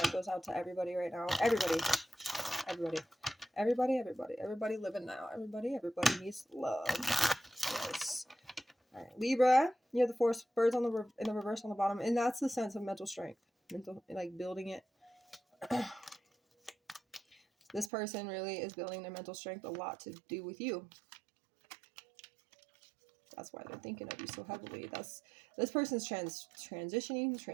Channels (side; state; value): left; drops out; at 17.9 s